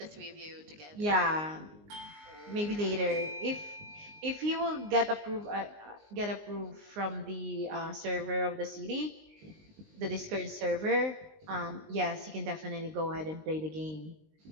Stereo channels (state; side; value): late; left; 19 ms